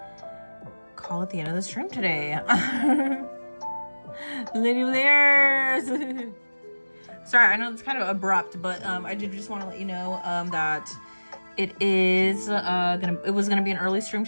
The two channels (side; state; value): both; inverted; correlation -1.00